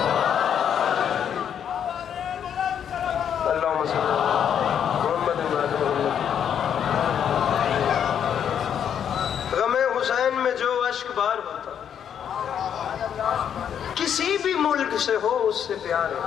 کسی بھی ملک سے ہو اس سے پیار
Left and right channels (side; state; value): right; quieter; 8.7 dB